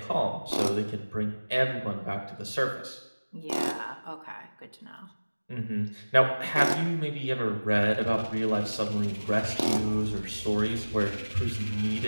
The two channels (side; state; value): both; inverted; correlation -1.00